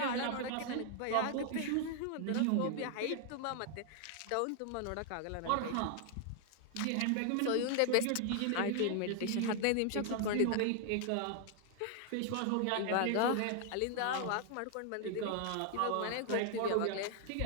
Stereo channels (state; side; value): different; both; correlation 0.00